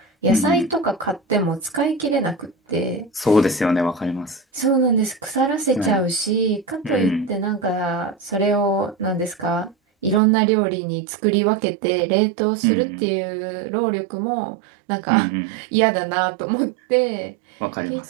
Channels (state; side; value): drops out; left; at 10.2 s